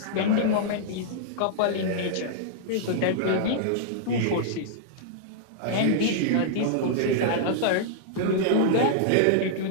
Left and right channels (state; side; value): different; both; correlation -0.01